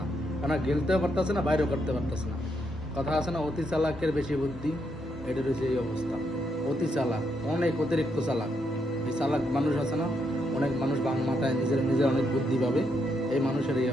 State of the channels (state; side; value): normal; both; correlation 0.78